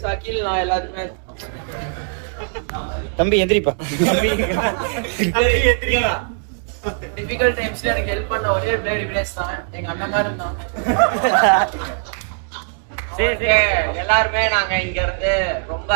சகில், நான் எல்லாருமே. தம்பி எந்திரிப்பா. டிஃபிகல்ட் டைம்ஸ்ல எனக்கு ஹெல்ப் பண்ண ஒரே பிளேயர் திவினேஷ் தான். எங்க அண்ணன் மாதிரி இருந்தான். சரி, எல்லாருமே நாங்க இங்க இருந்து ரொம்ப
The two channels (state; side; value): silent; left; 58 dB below the other